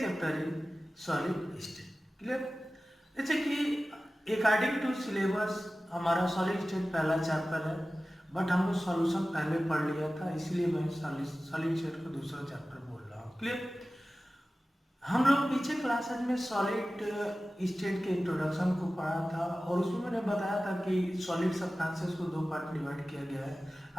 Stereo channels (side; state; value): both; normal; correlation 0.96